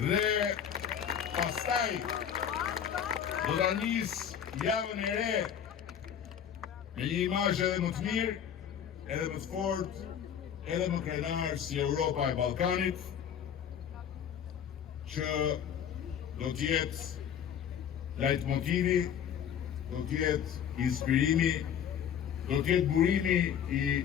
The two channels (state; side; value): quieter; right; 8.7 dB